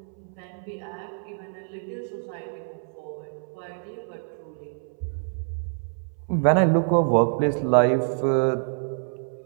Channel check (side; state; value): left; silent; 61 dB below the other